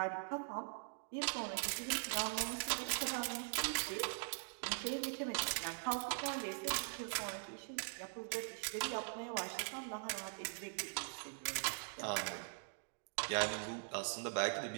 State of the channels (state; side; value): silent; left; digital silence